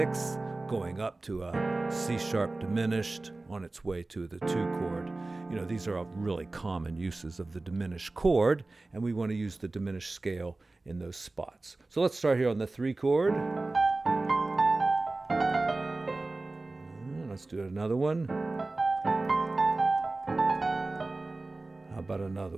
going up to a C sharp diminished on its way to the 2 chord. These are really common uses of the diminished chord, and we want to use the diminished scale in those spots. So let's start here on the 3 chord. Let's do another one. How about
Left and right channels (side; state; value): left; quieter; 3.2 dB